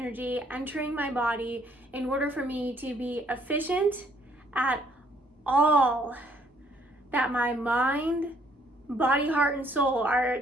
entering my body in order for me to be efficient at all that my mind, body, heart, and soul are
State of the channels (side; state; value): both; normal; correlation 0.65